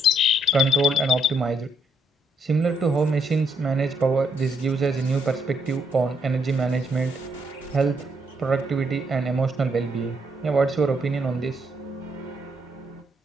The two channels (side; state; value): both; normal; correlation 0.74